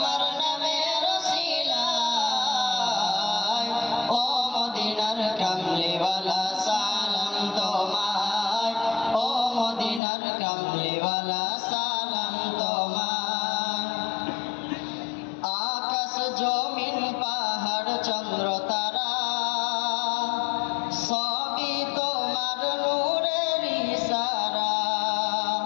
নামের ওসিলায় ও মদিনার কামলিওয়ালা সালাম তোমায় ও মদিনার কামলিওয়ালা সালাম তোমায় আকাশ জমিন পাহাড় চন্দ্র তারা সবই তোমার নূরের ইশারা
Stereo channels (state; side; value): drops out; right; at 10.0 s